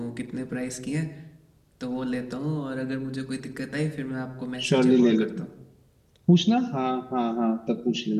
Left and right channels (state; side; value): identical; both; correlation 1.00